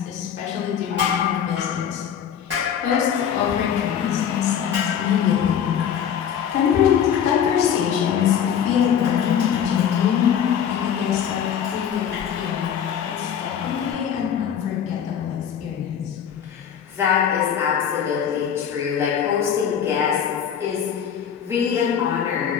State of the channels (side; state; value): right; quieter; 8.5 dB